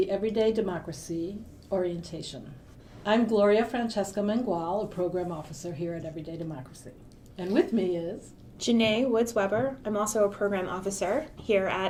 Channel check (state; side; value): identical; both; correlation 1.00